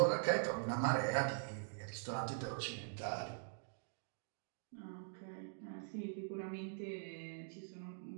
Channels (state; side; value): silent; left; digital silence